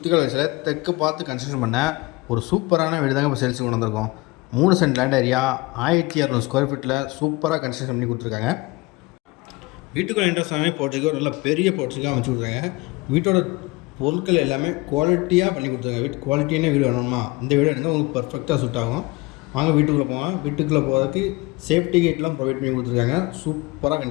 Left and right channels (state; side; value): quieter; right; 23.6 dB